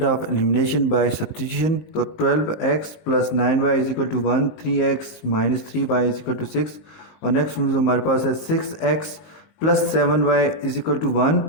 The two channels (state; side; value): late; right; 19 ms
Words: of elimination by substitution. तो 12x + 9y = 1, 3x - 3y = 6, और नेक्स्ट स्टूडेंट्स हमारे पास है 6x + 7y = 1,